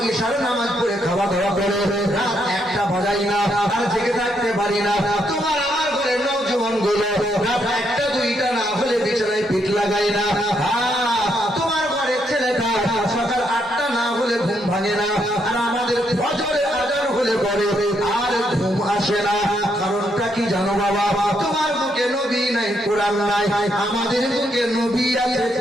ইশারা নামাজ পড়ে খাওয়া দাওয়া করে রাত একটা বাজাই না আর জেগে থাকতে পারি না। তোমার আমার ঘরে নওজোয়ান গুলো রাত একটা দুইটা না হলে বিছানায় পিঠ লাগাই না। তোমার ঘরের ছেলেটা সকাল 8টা না হলে ঘুম ভাঙে না, আর আমাদের ফজরের আজান হলে পরে আর ঘুম আসে না। কারণটা কি জানো বাবা? তোমার বুকে নবী নাই, কোরআন নাই, আমাদের বুকে নবী আছে,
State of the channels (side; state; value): both; normal; correlation 0.76